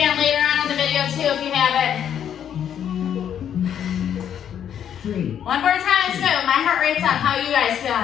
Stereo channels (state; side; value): quieter; right; 9.3 dB